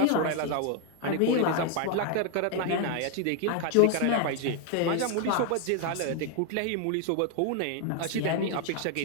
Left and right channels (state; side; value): different; both; correlation 0.01